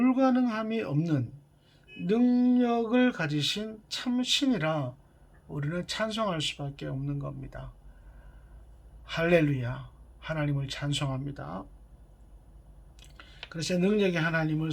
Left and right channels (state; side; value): identical; both; correlation 1.00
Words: 없는 능력을 가지신 참신이라 우리는 찬송할 수밖에 없는 겁니다. 할렐루야, 하나님을 찬송합니다. 그래서 능력의 하나님을